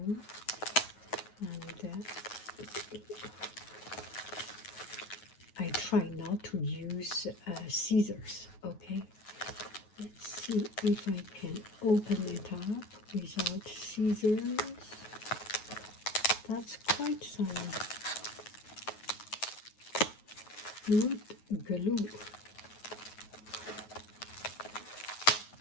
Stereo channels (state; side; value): late; right; 9.4 ms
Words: And I try not to use scissors. Okay. Let's see if I can open it up without scissors. That's quite some wood glue.